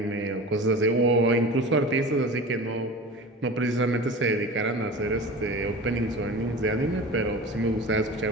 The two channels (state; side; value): normal; both; correlation 0.34